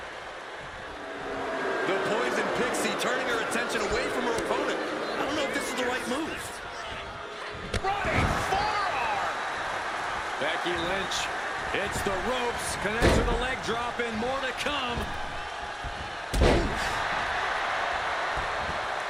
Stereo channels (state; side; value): identical; both; correlation 1.00